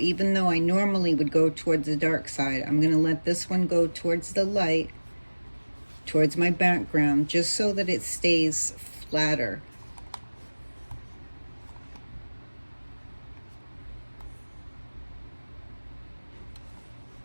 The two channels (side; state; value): both; inverted; correlation -1.00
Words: though I normally would go towards the dark side, I'm going to let this one go towards the light, towards my background, just so that it stays flatter.